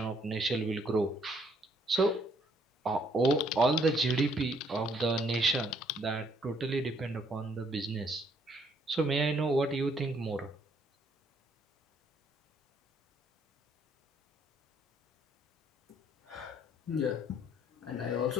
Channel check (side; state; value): both; normal; correlation 0.67